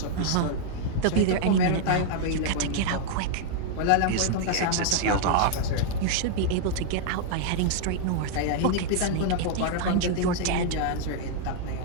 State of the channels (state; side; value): different; both; correlation -0.01